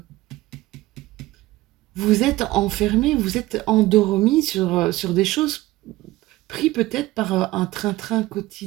vous êtes enfermés, vous êtes endormis sur des choses pris peut-être par un train-train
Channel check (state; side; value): quieter; left; 17.9 dB